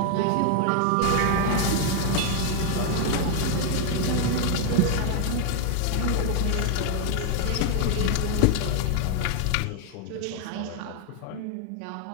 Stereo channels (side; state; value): both; different; correlation 0.00